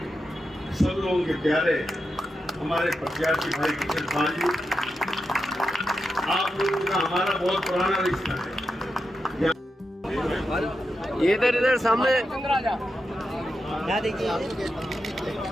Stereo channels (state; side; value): normal; both; correlation 0.87